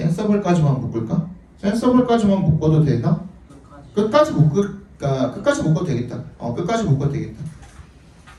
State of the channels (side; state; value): both; identical; correlation 1.00